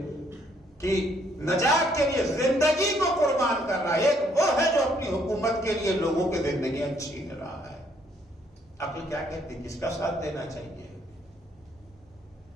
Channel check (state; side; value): normal; both; correlation 0.68